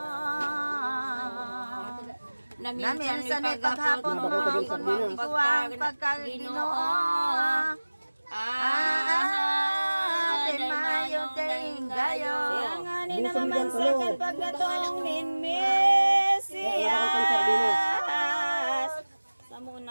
Na minsan ay paghapon mo kung magkuwang pagkaginoo. Din mayong tinggayo. Yang ani na mamansakan pagkatong Mesiyas. Sa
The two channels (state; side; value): inverted; both; correlation -1.00